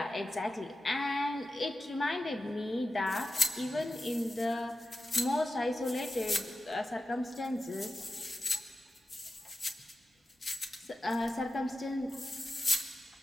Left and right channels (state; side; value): normal; both; correlation 0.92